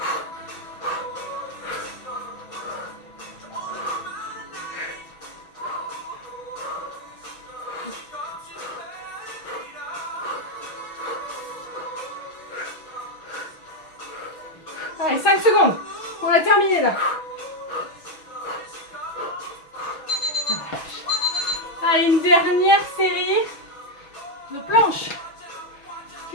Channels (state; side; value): late; right; 6.2 ms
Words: Allez, 5 secondes. On a terminé là. Allez, une dernière série de planches.